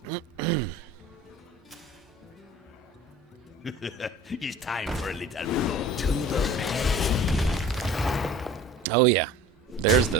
It's time for a little blow to the face. Oh yeah, that's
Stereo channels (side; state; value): both; normal; correlation 0.43